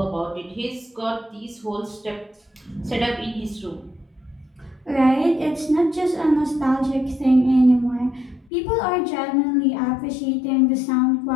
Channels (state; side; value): drops out; right; at 8.5 s